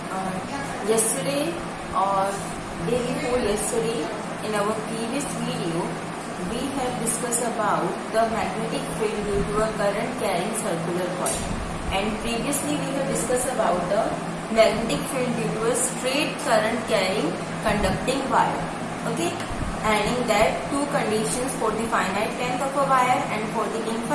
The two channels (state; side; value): identical; both; correlation 1.00